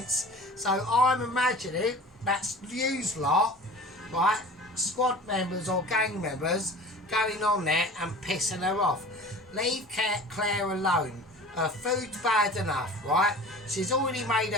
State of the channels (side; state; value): both; normal; correlation 0.40